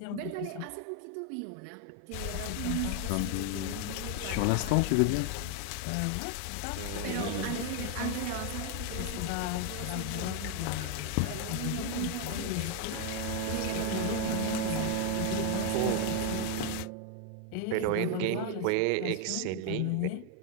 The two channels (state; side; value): different; both; correlation 0.00